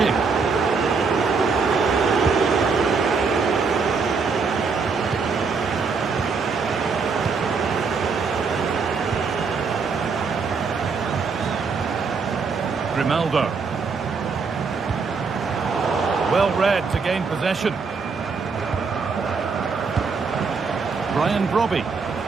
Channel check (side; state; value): left; quieter; 5.0 dB